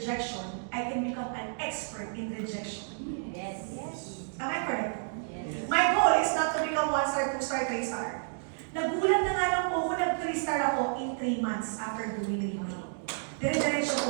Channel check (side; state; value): left; silent; digital silence